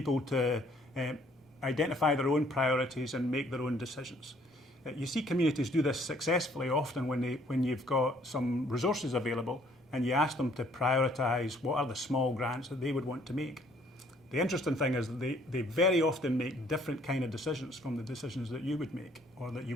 to identify their own priorities and make their own decisions. You see communities do this successfully often when you've got some resources available and you ask them to prioritise what are the small grants that they would want to make. The interesting thing is that they very often make different kind of decisions from the decisions that you would make or that you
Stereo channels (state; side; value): normal; both; correlation 0.62